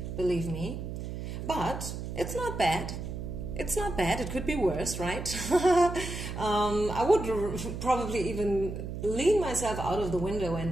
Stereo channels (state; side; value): noise; right; hum, 6 dB below the sound